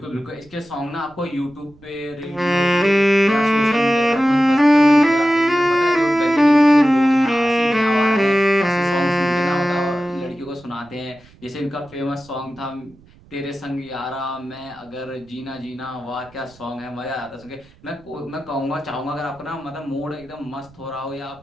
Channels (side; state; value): right; noise; rumble, 26 dB below the sound